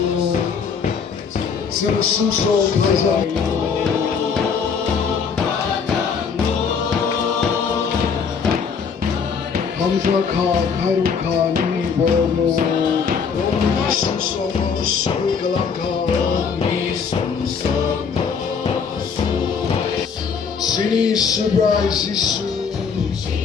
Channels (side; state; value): right; quieter; 6.1 dB